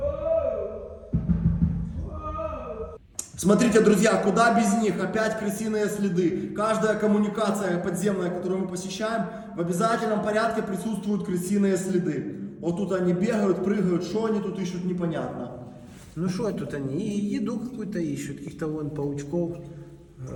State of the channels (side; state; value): both; identical; correlation 1.00